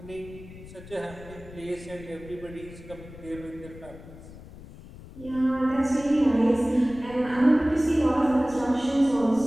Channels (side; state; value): left; noise; rumble, 17 dB below the sound